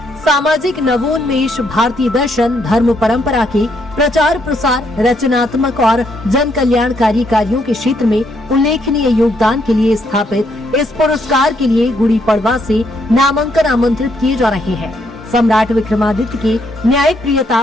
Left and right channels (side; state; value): both; normal; correlation 0.73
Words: सामाजिक नवोन्मेष, भारतीय दर्शन, धर्म परंपरा के प्रचार प्रसार, रचनात्मक और जन कल्याणकारी कार्यों के क्षेत्र में उल्लेखनीय योगदान के लिए स्थापित इस पुरस्कार के लिए गुड़ी पड़वा से नामांकन आमंत्रित किए जा रहे हैं। सम्राट विक्रमादित्य के न्याय प्रियता,